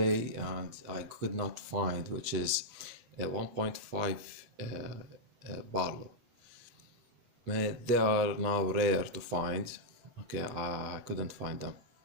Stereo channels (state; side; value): late; left; 8.1 ms